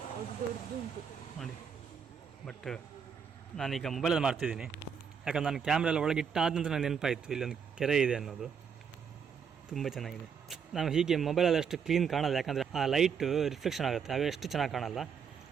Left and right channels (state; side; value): quieter; left; 6.8 dB